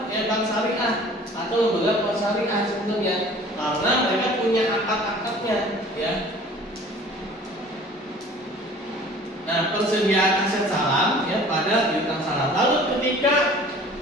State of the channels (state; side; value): normal; both; correlation 0.48